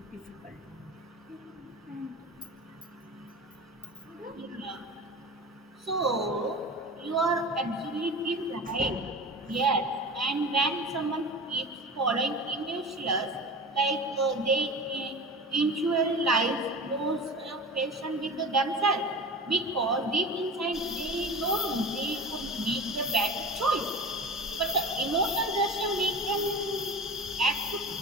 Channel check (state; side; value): normal; both; correlation 0.32